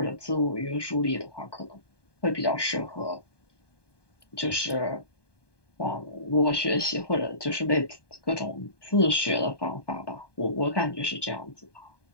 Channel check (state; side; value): late; right; 1.2 ms